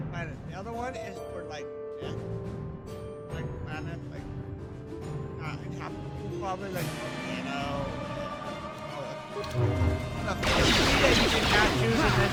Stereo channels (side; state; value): both; identical; correlation 1.00